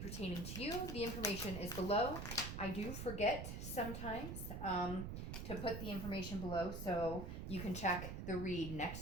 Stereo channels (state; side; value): noise; right; rumble, 5 dB below the sound